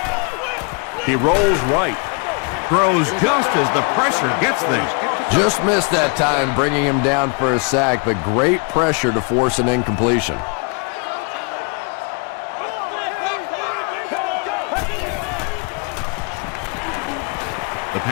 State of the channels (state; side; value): quieter; right; 31.7 dB